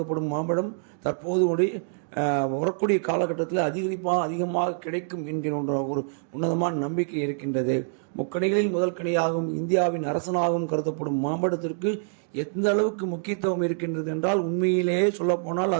மாம்பழம் தற்போது வரக்கூடிய காலகட்டத்தில் அதிகமாக கிடைக்கும் என்கிற ஒரு உன்னதமான நம்பிக்கை இருக்கின்றது. முக்கணிகளில் முதல் கனியாகவும் இந்தியாவின் அரசனாகவும் கருதப்படும் மாம்பழத்திற்கு எந்த அளவுக்கு முக்கியத்துவம் இருக்கின்றது என்றால், உண்மையிலேயே சொல்லப்போனால்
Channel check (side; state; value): left; silent; digital silence